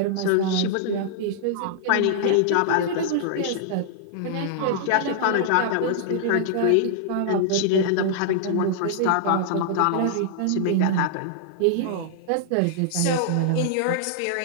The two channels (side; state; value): both; different; correlation -0.01